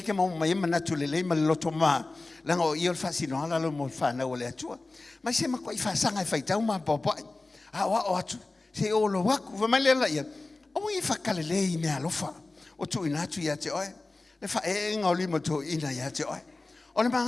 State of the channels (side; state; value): right; quieter; 3.2 dB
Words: ke mo mai mana tu le ma lo toma la ngo io fa sino ala lo mo fa na o le tua ma se ma ko fa sanga fa tau ma popo a wa o atu se o lo wa ku ma le la ia o i fa kale le me alofa o tu ina tu ya te oe le fa e nga li mo tu ina ya te oe o le